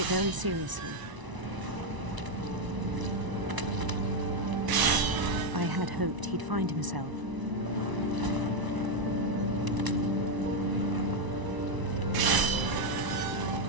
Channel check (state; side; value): late; left; 1.0 ms